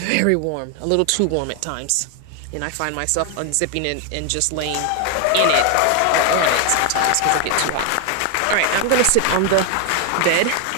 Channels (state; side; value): different; both; correlation 0.00